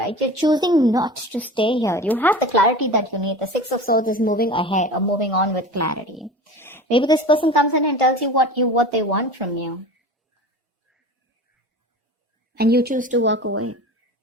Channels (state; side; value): normal; both; correlation 0.36